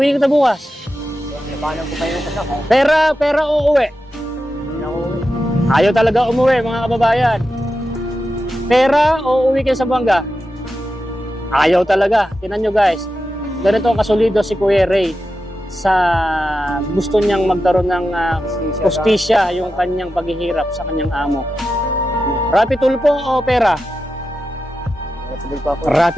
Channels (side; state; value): both; normal; correlation 0.90